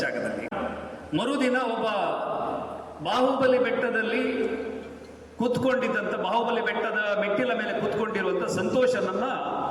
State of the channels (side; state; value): both; identical; correlation 1.00